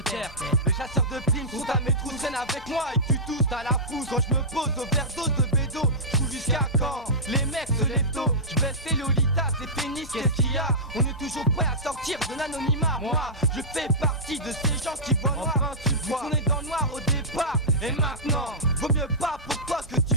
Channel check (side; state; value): both; normal; correlation -0.16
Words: taire. Les chasseurs de primes sont à mes trous, traînent avec moi et tu tousses à la fousse. Quand je me pose au overdose de bédo, je joue jusqu'à quand les mecs se lèvent tôt. Je baisse les lolitas, les pénis, qu'est-ce qu'il y a? On est toujours prêt à sortir de l'anonymat. Moi, je fais partie de ces gens qui voient noir. Enfin, tu vois, on est dans le noir au départ. Et maintenant, vaut mieux pas pour toi que